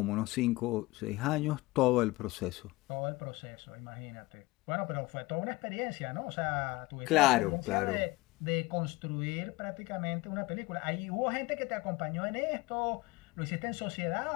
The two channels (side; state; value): right; quieter; 21.4 dB